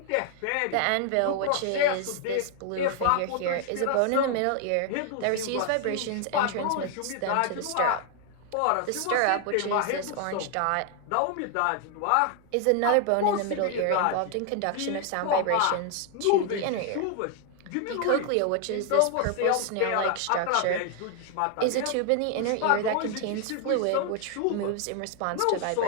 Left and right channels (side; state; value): both; different; correlation 0.00